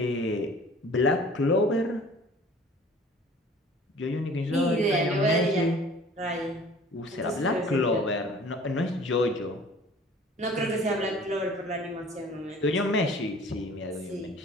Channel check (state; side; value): normal; both; correlation 0.48